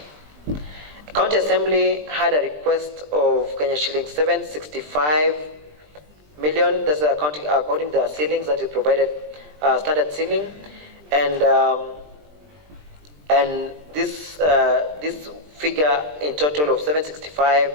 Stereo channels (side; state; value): left; late; 20 ms